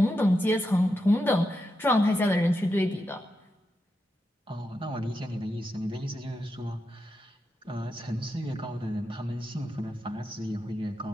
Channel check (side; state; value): both; normal; correlation 0.87